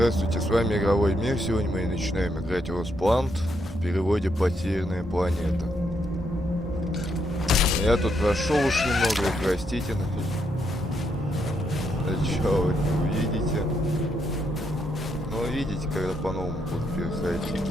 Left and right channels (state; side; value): normal; both; correlation 0.77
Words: с вами Игровой Мир. Сегодня мы начинаем играть LostPlanet, в переводе «Потерянная планета». Я тут прошел уж немного, простите. Чё вы не увидите? Но увидите, когда по-новому буду переходить.